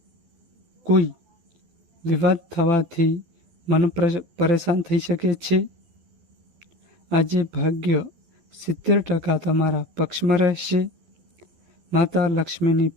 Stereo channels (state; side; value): late; left; 12 ms